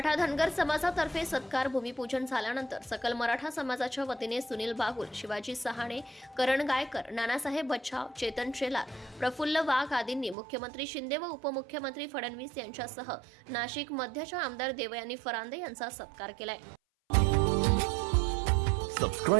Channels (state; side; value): drops out; left; at 10.4 s